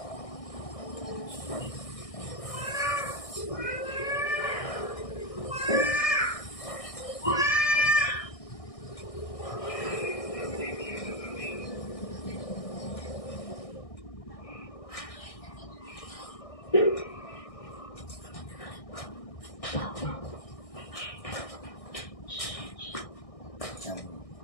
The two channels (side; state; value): right; late; 1.6 ms